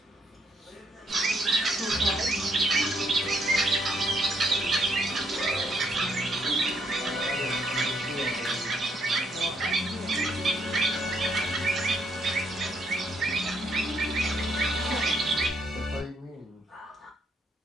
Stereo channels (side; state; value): both; normal; correlation 0.72